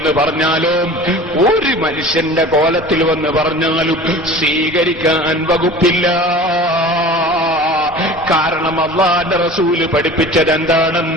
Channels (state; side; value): normal; both; correlation 0.40